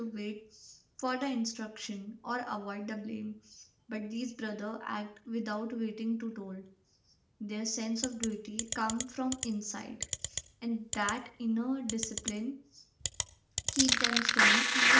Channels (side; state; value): both; identical; correlation 1.00